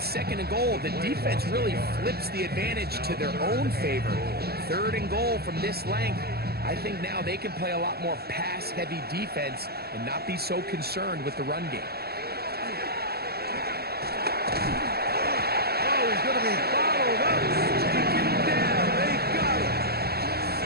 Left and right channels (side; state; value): left; late; 0.46 ms